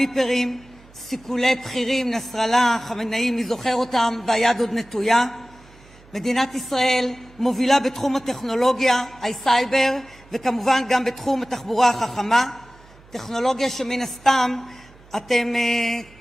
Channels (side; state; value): right; noise; hum, 25 dB below the sound